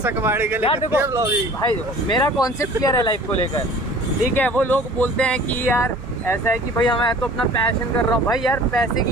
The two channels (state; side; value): normal; both; correlation 0.47